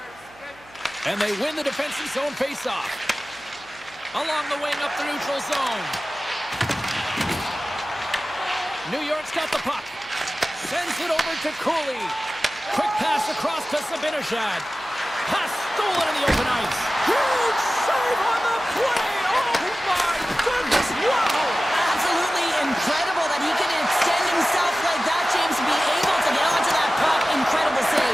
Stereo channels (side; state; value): right; noise; hum, 26 dB below the sound